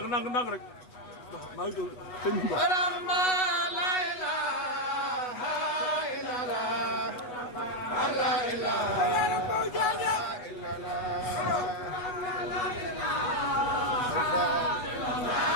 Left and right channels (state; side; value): late; right; 8.2 ms